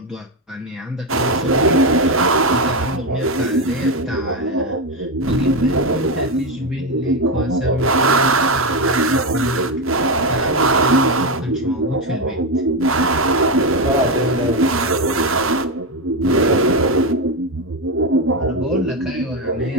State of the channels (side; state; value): both; normal; correlation 0.10